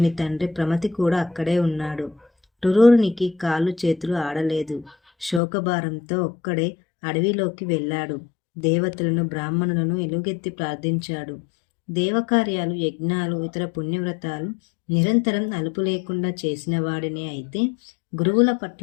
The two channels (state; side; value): drops out; right; at 5.4 s